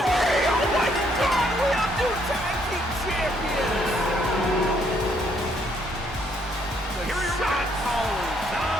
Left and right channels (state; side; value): normal; both; correlation 0.70